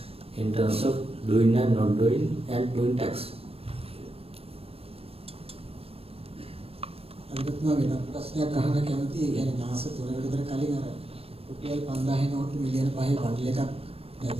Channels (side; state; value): left; late; 0.28 ms